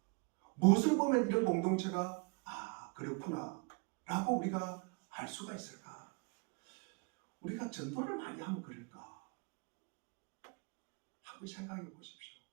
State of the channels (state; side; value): quieter; left; 31.5 dB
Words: 무엇을 보면 이런 공동체가 그렇구나 라고 우리가 알 수가 있을까? 우리가 전도를 많이 하면 그럴까? 한번 생각해 보십시오.